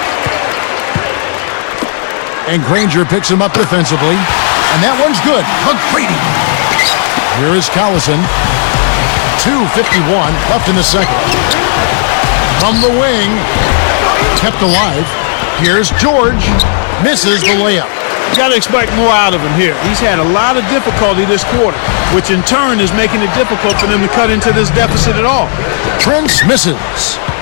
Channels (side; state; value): right; silent; digital silence